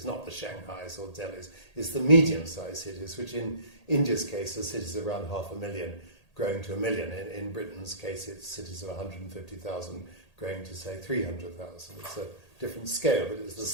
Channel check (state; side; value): late; right; 1.8 ms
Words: not the Shanghais or Delhis, it's the medium-sized cities, which in India's case are cities of around 500,000 growing to 1 million. In Britain's case, it's cities of 150,000 growing to, say, 300,000. It's a different scale, but it's the